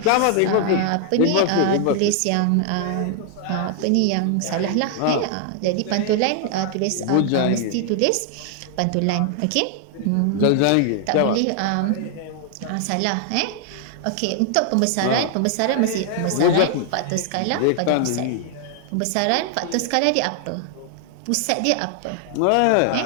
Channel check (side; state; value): both; different; correlation 0.00